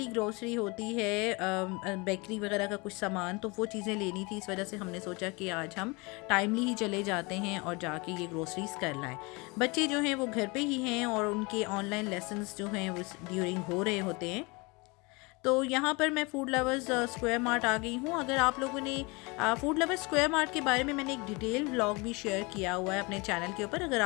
ग्रॉसरी होती है बेकरी वगैरह का कुछ सामान, तो वो चीज़ें लेनी थी। इस वजह से हमने सोचा कि आज हम टाइमली ही चले जाते हैं और जाके ये ग्रॉसरीज़ कर लाएँ। बच्चे जो हैं वो घर पर ही हैं और उनके ऑनलाइन लेसन्स जो हैं वो ड्यूरिंग हो रहे होते हैं। तो यहाँ पर मैं फूड लवर्स स्क्वायर मार्ट आ गई हूँ। अगर आप लोगों ने फूड लवर्स स्क्वायर मार्ट के बारे में मैंने एक डिटेल व्लॉग भी शेयर किया हुआ है अपने चैनल के ऊपर। अगर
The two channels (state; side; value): quieter; right; 27.0 dB